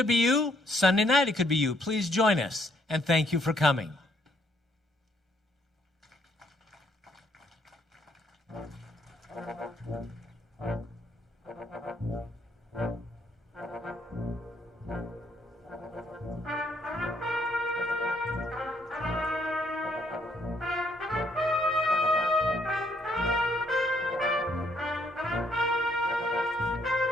be you. Sunday night it could be you. Please join us, and thank you for coming.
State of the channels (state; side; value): normal; both; correlation 0.70